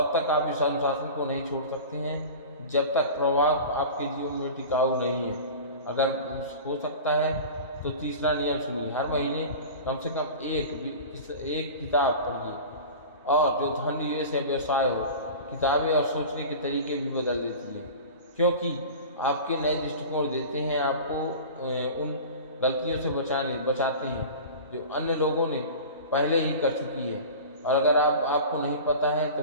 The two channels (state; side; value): inverted; both; correlation -0.35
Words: तक आप इस अनुशासन को नहीं छोड़ सकते हैं जब तक प्रभाव आपके जीवन में टिकाऊ नहीं है। अगर हो सकता है तो तीसरा नियम सुनिए। हर महीने कम से कम एक किताब पढ़िए। और जो धन निवेश है, व्यवसाय हो, किताबें और सोचने के तरीके भी बदल देती हैं, क्योंकि आपके नए दृष्टिकोण देते हैं, आपको उन गलतियों से बचाते हैं जो अन्य लोगों ने पहले ही कर चुकी है। और अगर आपको नहीं पता है तो